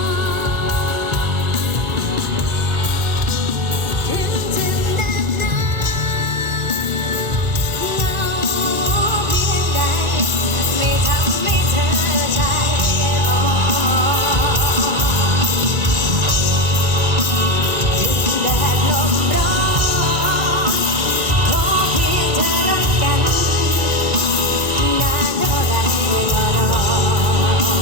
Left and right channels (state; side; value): late; left; 2.3 ms